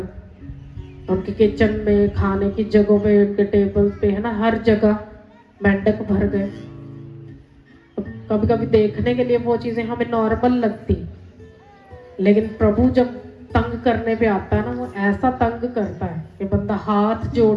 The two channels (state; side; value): identical; both; correlation 1.00